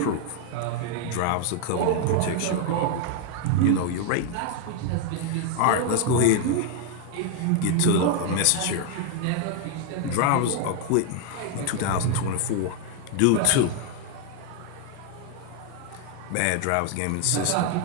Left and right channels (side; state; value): both; different; correlation 0.01